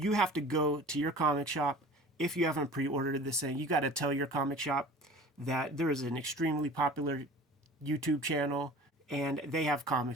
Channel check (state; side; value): normal; both; correlation 0.42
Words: have to go to your comic shop. If you haven't pre-ordered this thing, you got to tell your comic shop that there is an extremely popular YouTube channel, and they have